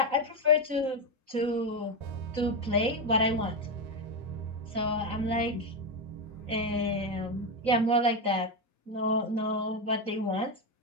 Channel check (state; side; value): late; left; 3.9 ms